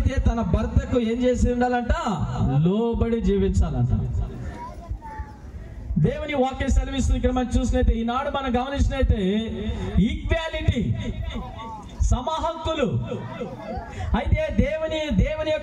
తన భర్తకు ఏం చేసి ఉండాలంట? లోబడి జీవించాలంట. దేవుని వాక్యం సెలవిస్తుంది ఇక్కడ మనం చూసినైతే, ఈనాడు మనం గమనించినైతే ఈక్వాలిటీ, సమహక్కులు. అయితే దేవుని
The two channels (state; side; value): identical; both; correlation 1.00